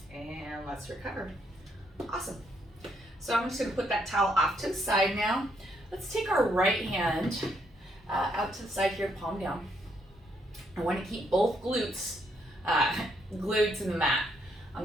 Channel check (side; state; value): both; normal; correlation 0.74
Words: And let's recover. Awesome. So I'm just gonna put that towel off to the side now. Let's take our right hand out to the side here, palm down. I want to keep both glutes glued to the mat. I'm